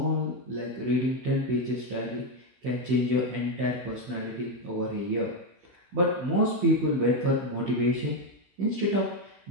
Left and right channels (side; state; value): left; late; 16 ms